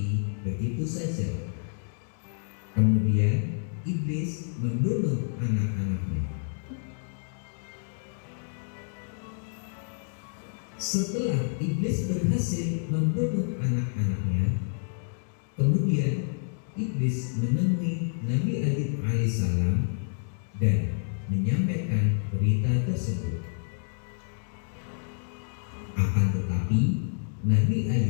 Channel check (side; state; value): right; silent; digital silence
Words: begitu saja. Kemudian iblis membunuh anak-anaknya. Setelah iblis berhasil membunuh anak-anaknya, kemudian iblis menemui Nabi Ayub alaihissalam dan menyampaikan berita tersebut. Akan tetapi Nabi